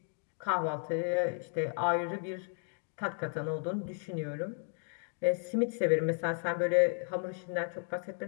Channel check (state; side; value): silent; right; 55 dB below the other